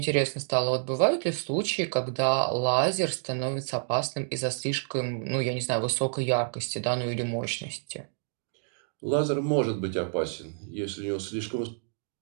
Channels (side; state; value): left; silent; digital silence